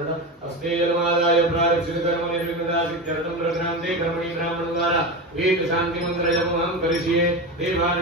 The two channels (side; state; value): both; normal; correlation 0.21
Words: हस्ते जलमादाय प्रारक्षित कर्म निर्विघ्नसिद्ध्यर्थं प्रघ्नान्ते कर्मणि ब्राह्मणद्वारा वेद शांति मंत्र जपमहं करिष्ये.